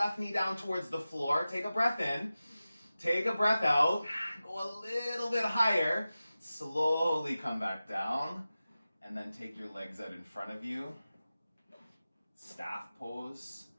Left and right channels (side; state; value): both; inverted; correlation -0.95